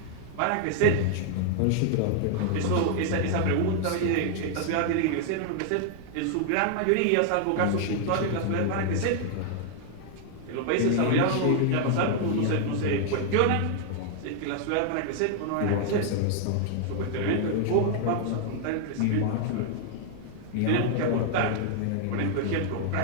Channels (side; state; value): both; different; correlation -0.01